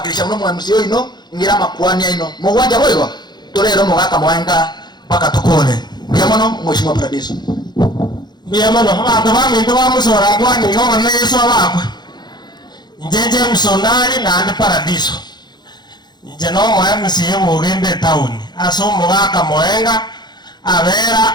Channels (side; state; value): right; late; 0.21 ms